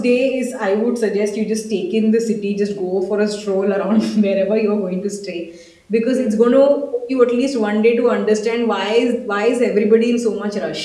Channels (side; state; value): both; identical; correlation 1.00